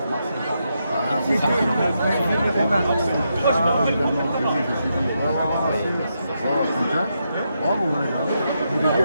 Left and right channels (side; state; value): both; inverted; correlation -0.82